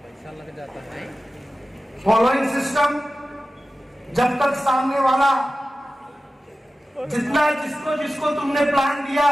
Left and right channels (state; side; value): normal; both; correlation 0.95